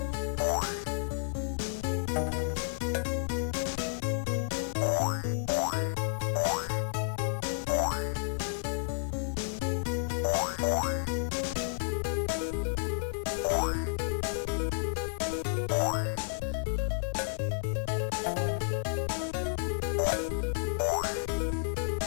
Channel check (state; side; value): silent; right; digital silence